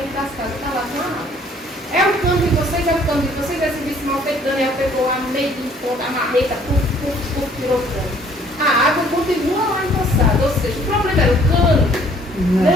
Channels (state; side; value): normal; both; correlation 0.59